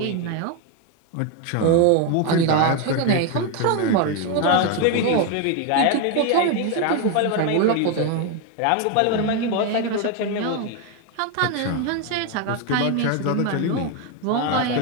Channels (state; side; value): different; both; correlation 0.02